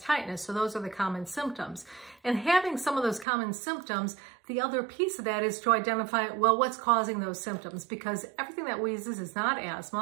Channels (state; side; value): drops out; left; at 3.2 s